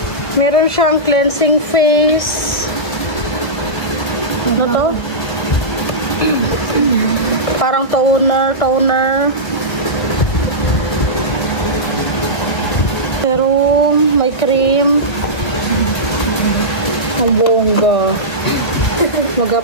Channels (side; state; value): right; late; 1.3 ms